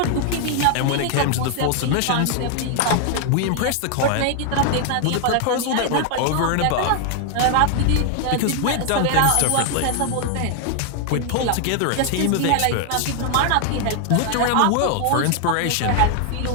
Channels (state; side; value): different; both; correlation 0.00